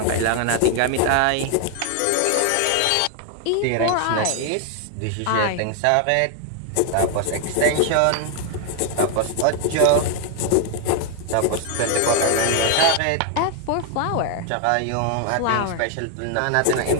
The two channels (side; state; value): both; different; correlation 0.00